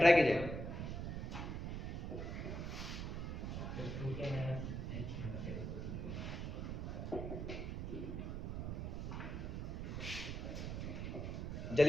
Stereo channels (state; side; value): noise; right; rumble, 3 dB below the sound